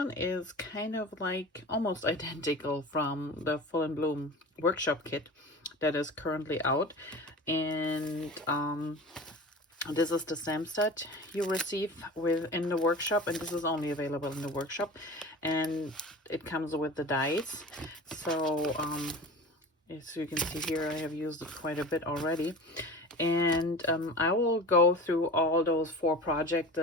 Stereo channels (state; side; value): normal; both; correlation 0.35